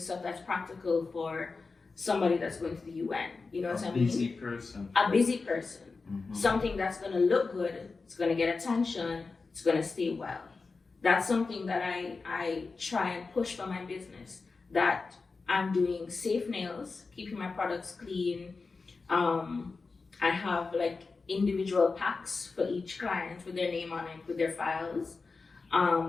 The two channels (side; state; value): right; quieter; 4.2 dB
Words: that's practical for somebody that's going to the UN. You know what I mean? A busy person. A busy person. Mm-hmm. Something that's gonna look good, it's gonna get attention, it's gonna stay well. That's something that I try and push for my business. That I'm doing safe nails, keeping my products clean. I have like individual packs for each client with their name on it, with their files.